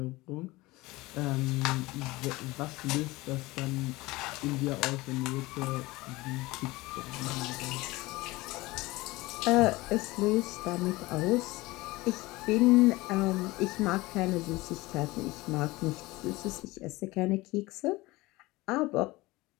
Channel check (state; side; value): quieter; right; 20.8 dB